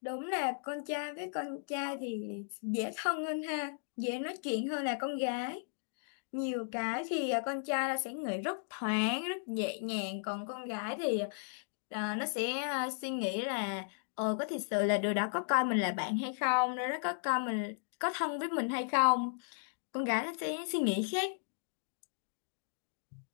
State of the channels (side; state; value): right; silent; digital silence